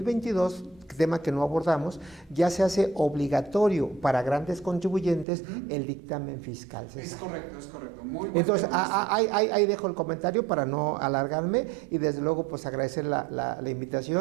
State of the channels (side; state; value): left; drops out; at 5.2 s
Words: tema que no abordamos, ya se hace obligatorio para grandes contribuyentes el dictamen fiscal, César. Es correcto. Muy bueno. Entonces, ahí dejo el comentario para no alargarme y desde luego pues agradecer la